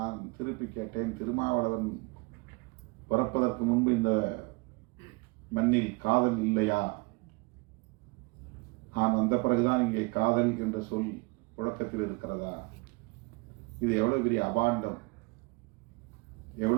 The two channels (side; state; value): left; quieter; 27.7 dB